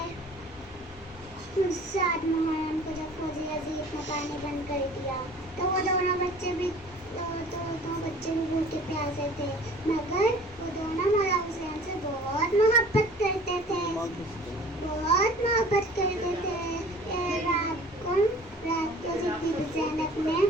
सात मुहर्रम को जब फौजी अजीब ने पानी बंद कर दिया तो वो दोनों बच्चे भी भूखे प्यासे थे, मगर वो दोनों मौला हुसैन से बहुत मोहब्बत करते थे। रात को जब बीबी ज़ैनब ने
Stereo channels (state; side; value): normal; both; correlation 0.47